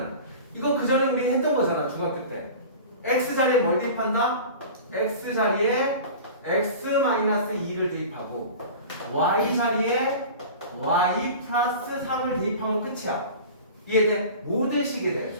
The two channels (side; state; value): both; inverted; correlation -0.37